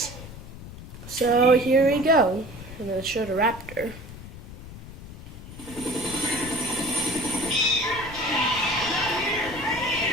So here we go. I'm going to show the raptor.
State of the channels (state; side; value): noise; left; rumble, 14 dB below the sound